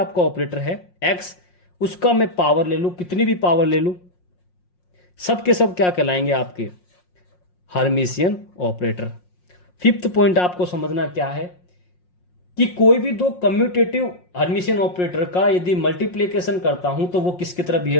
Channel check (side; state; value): right; late; 5.6 ms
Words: ऑपरेटर है एक्स, उसका मैं पावर ले लूं, कितनी भी पावर ले लूं, सब के सब क्या कहलाएंगे आपके? Hermitian operator. फिफ्थ पॉइंट आपको समझना क्या है कि कोई भी दो कम्यूटेटिव हर्मिशियन ऑपरेटर का यदि मल्टीप्लिकेशन करता हूं तो वो किसकी तरह